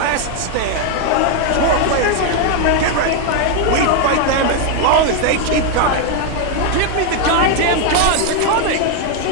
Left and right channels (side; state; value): both; different; correlation 0.01